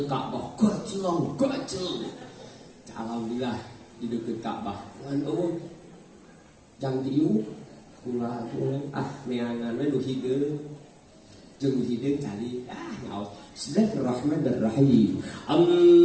Ka'bah, gacel. Alhamdulillah di deukeut Ka'bah. Ngan eueuh jang diu kula neangan we nu hideung. Jeung hideung cari nyaos. Bismillahirrahmanirrahim.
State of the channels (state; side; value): identical; both; correlation 1.00